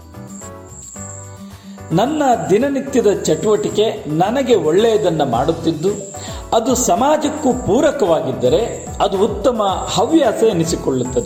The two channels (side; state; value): both; identical; correlation 1.00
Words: ನನ್ನ ದಿನನಿತ್ಯದ ಚಟುವಟಿಕೆ ನನಗೆ ಒಳ್ಳೆಯದನ್ನು ಮಾಡುತ್ತಿದ್ದು ಅದು ಸಮಾಜಕ್ಕೂ ಪೂರಕವಾಗಿದ್ದರೆ ಅದು ಉತ್ತಮ ಹವ್ಯಾಸ